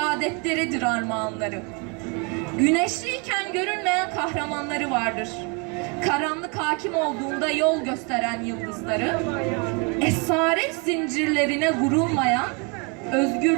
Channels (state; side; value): quieter; left; 33.4 dB